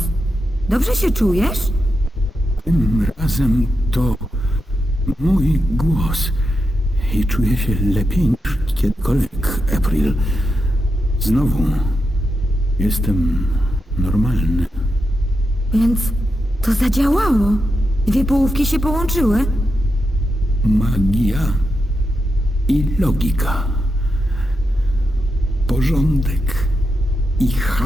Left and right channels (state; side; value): normal; both; correlation 0.86